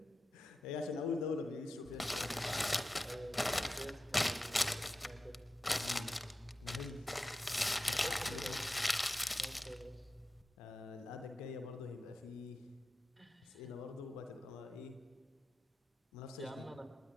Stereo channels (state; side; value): normal; both; correlation 0.92